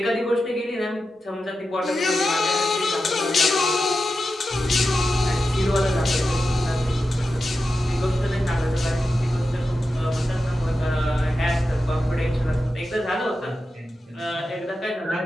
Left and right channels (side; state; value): both; normal; correlation 0.91